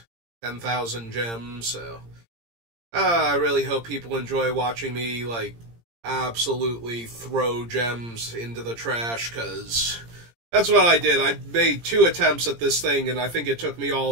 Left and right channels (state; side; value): late; left; 17 ms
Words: 10,000 gems, so I really hope people enjoy watching me, absolutely throw gems into the trash, because that's what I did. I made 2 attempts at this thing, and I think it took me all